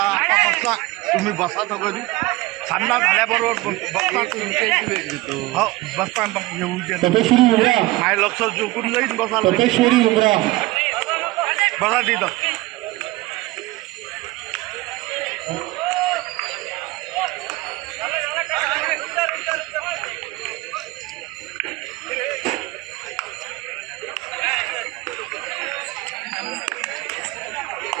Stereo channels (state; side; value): quieter; left; 20.1 dB